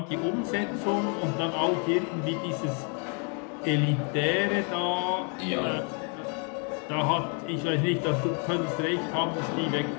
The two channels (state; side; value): quieter; right; 38.1 dB